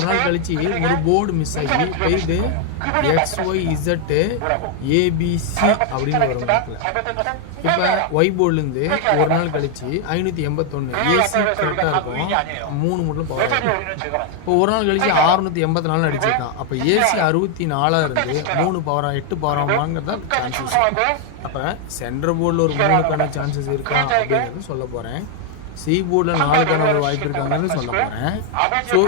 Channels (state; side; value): different; both; correlation 0.00